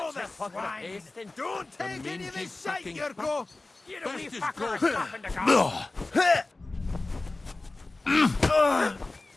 the swine! Don't take any of this shite, Yurko! You know, we fucker stop in the car!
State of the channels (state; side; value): quieter; right; 3.2 dB